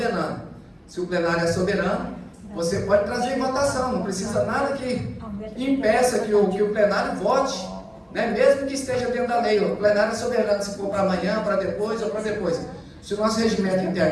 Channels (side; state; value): both; identical; correlation 1.00